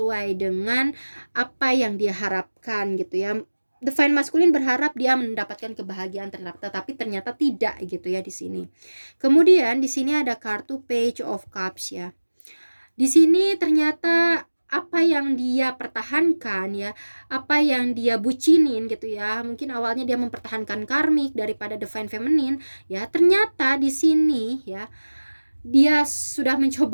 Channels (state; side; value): inverted; both; correlation -1.00